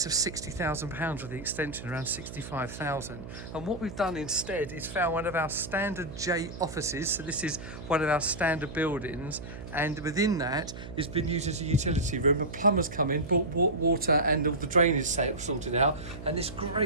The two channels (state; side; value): noise; right; hum, 11 dB below the sound